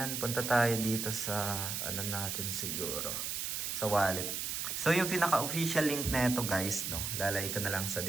punta tayo dito sa ano natin siguro, sa wallet. So, yung pinaka-official link na ito guys, no, lalagay ko na lang sa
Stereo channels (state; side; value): noise; right; hiss, 2 dB below the sound